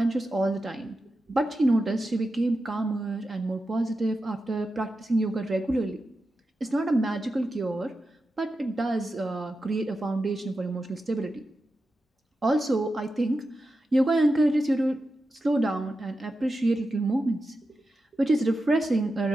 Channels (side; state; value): both; normal; correlation 0.90